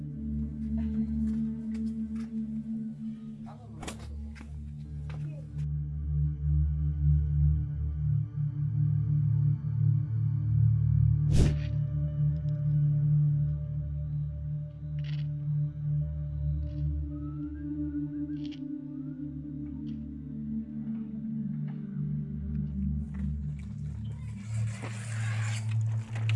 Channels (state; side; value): identical; both; correlation 1.00